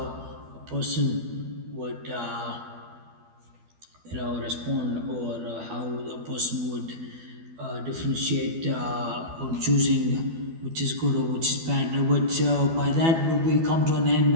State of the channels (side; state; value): left; late; 12 ms